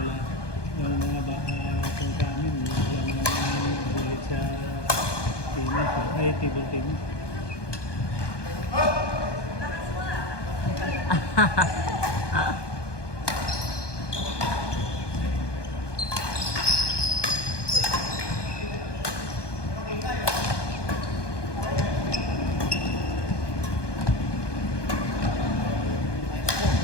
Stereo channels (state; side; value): late; right; 1.2 ms